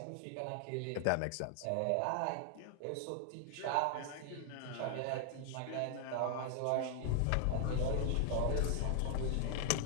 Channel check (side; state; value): both; different; correlation 0.00